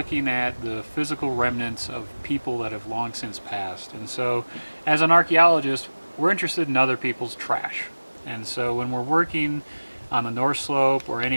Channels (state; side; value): inverted; both; correlation -1.00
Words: at the physical remnants of people that have long since passed. And so as an archaeologist, we're interested in other people's trash. And so when we're working on the North Slope or